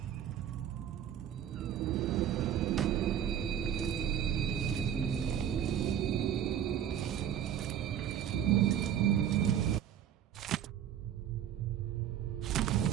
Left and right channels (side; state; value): left; quieter; 9.8 dB